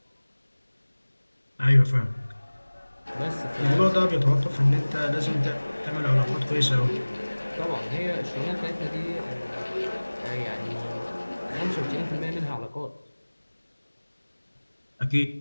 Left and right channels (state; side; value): inverted; both; correlation -1.00